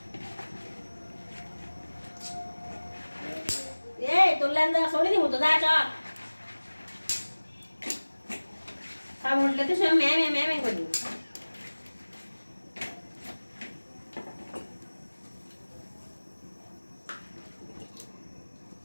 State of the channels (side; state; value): both; inverted; correlation -1.00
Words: তোর লেন্দা সরে দিব তো, যা চল। সব উল্টে তো সব ম্যামে ম্যামে করি।